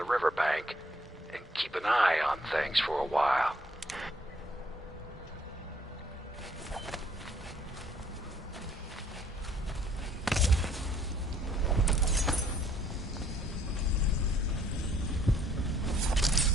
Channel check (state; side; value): normal; both; correlation 0.63